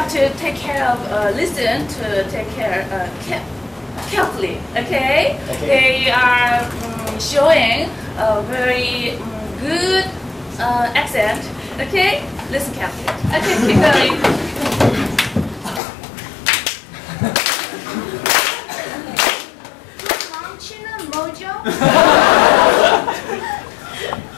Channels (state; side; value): drops out; right; at 15.8 s